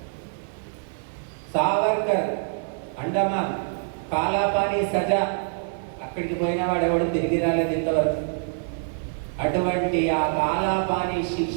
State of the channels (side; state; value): left; silent; 62 dB below the other